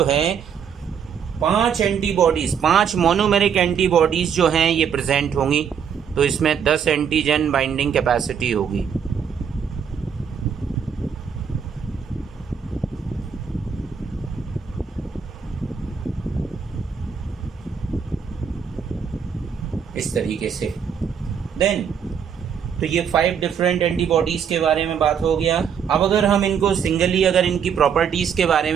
है 5 एंटीबॉडीज, 5 मोनोमेरिक एंटीबॉडीज जो हैं ये प्रेजेंट होंगी। तो इसमें 10 एंटीजन बाइंडिंग कैपेसिटी होगी। इस तरीके से देन तो ये 5 डिफरेंट एंटीबॉडीज के बारे में बात हो गया। अब अगर हम इनको सिंगली अगर इनकी प्रॉपर्टीज के बारे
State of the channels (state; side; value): quieter; left; 7.4 dB